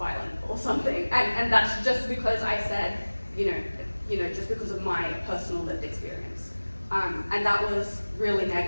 or something. And that's just because I said, you know, just because of my personal lived experience. And that was really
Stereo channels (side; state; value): both; inverted; correlation -1.00